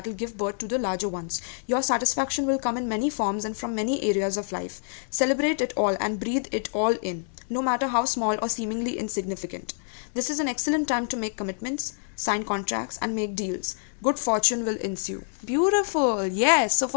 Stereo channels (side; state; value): right; silent; 60 dB below the other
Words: will give birth to the larger ones. Your satisfaction will come in many forms and from many areas of life. Celebrate it all and breathe it all in, no matter how small or seemingly insignificant. This is an excellent time to make commitments, sign contracts, and make deals. Good fortune will ensue. Beautiful. Yes. So